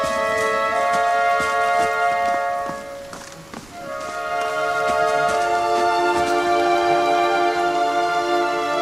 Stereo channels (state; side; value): noise; right; rumble, 28 dB below the sound